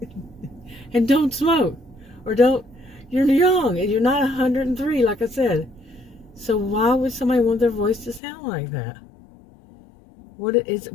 And don't smoke, or don't, you're young and you're not 103, like I said. So why would somebody want their voice to sound like that? What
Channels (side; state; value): right; drops out; at 8.2 s